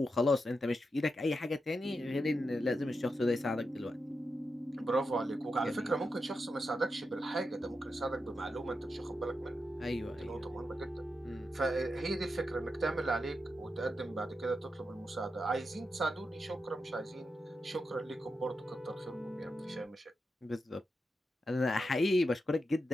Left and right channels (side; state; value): both; normal; correlation 0.87